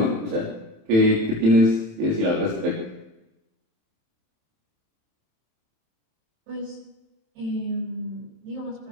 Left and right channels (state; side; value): late; left; 27 ms